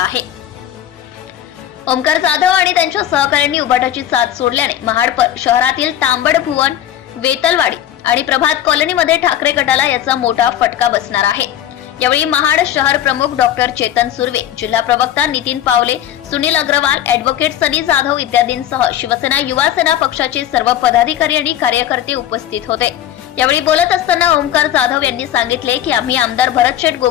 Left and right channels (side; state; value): right; quieter; 11.5 dB